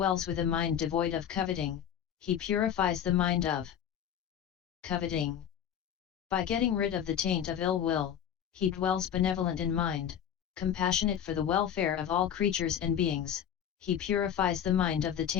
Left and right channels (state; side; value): quieter; right; 9.2 dB